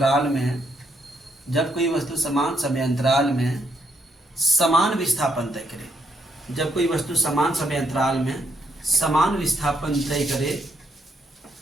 में, जब कोई वस्तु समान समय अंतराल में समान विस्थापन तय करे, जब कोई वस्तु समान समय अंतराल में समान विस्थापन तय करे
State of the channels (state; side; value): normal; both; correlation 0.76